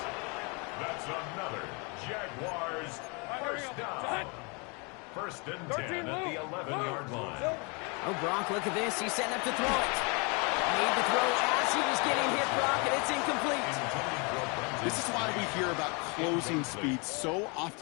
That's another Jaguars first down. 1st and 10 at the 11-yard line. Oh, Brock, look at this. He's setting up to throw it. Made the throw as he was getting hit, Brock, and it's incomplete. This is why we hear about closing speed so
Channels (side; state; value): right; quieter; 31.7 dB